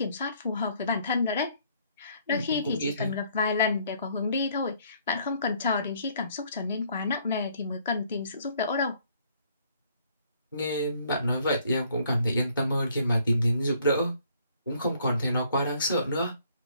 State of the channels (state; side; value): inverted; both; correlation -0.64